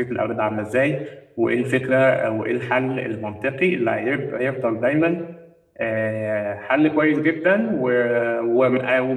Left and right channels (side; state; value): both; identical; correlation 1.00